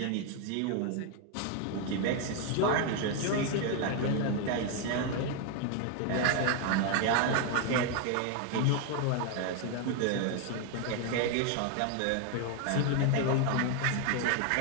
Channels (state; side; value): different; both; correlation 0.01